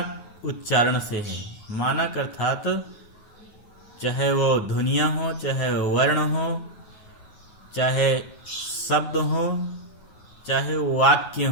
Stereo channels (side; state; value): right; late; 9.4 ms